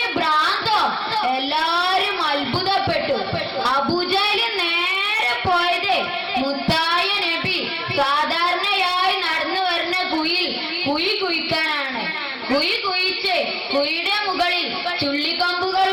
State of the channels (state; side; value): identical; both; correlation 1.00